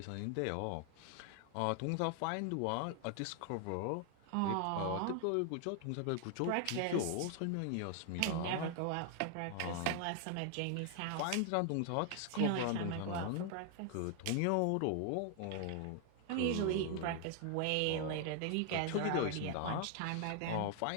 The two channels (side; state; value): both; different; correlation 0.00